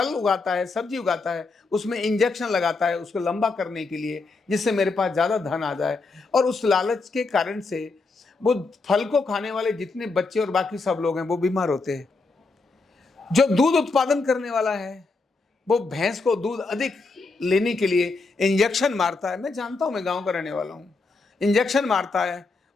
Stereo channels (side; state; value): right; quieter; 3.8 dB